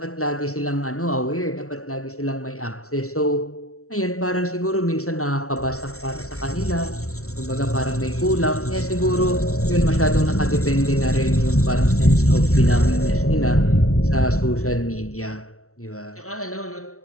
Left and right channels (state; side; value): late; right; 0.63 ms